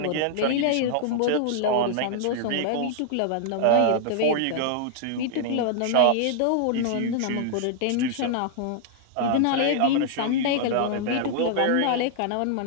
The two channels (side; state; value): both; different; correlation -0.01